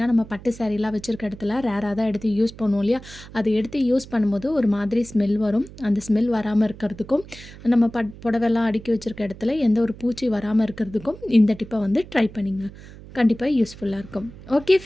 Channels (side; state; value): right; noise; hum, 17 dB below the sound